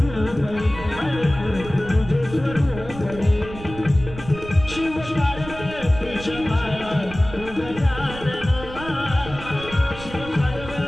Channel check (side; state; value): right; noise; rumble, 13 dB below the sound